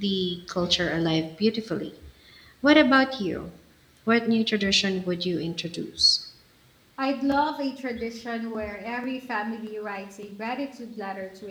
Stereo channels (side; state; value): both; identical; correlation 1.00